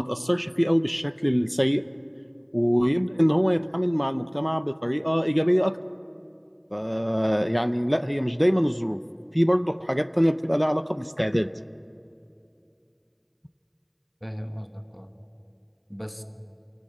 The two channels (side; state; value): both; identical; correlation 1.00